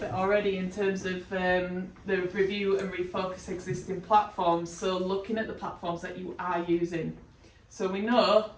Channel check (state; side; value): identical; both; correlation 1.00